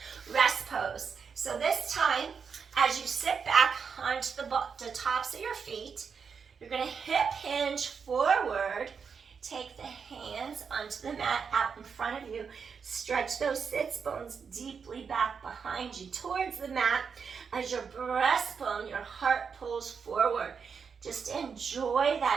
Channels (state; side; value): quieter; left; 6.1 dB